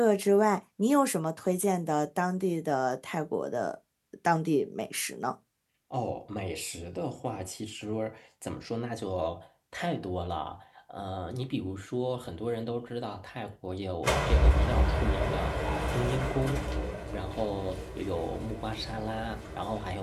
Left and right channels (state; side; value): identical; both; correlation 1.00